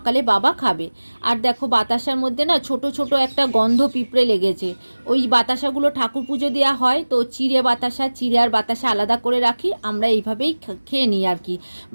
বাবা খাবে। আর দেখো বাতাসার মধ্যে না ছোট ছোট একটা গন্ধ পিঁপড়ে লেগেছে। ওই বাতাসাগুলো ঠাকুর পুজো দেওয়া হয়, তো চিড়ে বাতাসা, চিড়ে আর বাতাসা আলাদা করে রাখি, আমরা এইভাবেই খেয়ে নিই আর কি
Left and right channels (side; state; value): both; inverted; correlation -1.00